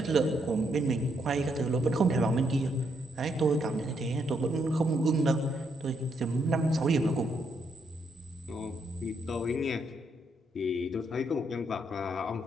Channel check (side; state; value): both; normal; correlation 0.76